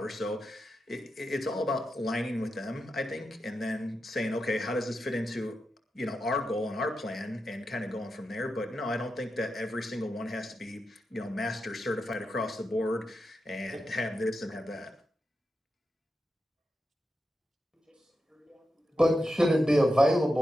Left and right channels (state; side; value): normal; both; correlation 0.88